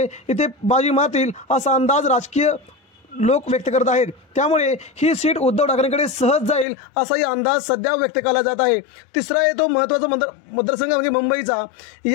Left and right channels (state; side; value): drops out; right; at 6.7 s